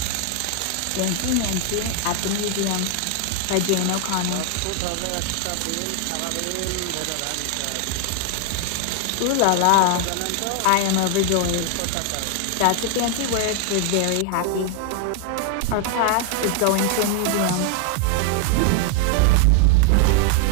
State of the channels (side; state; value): both; different; correlation 0.00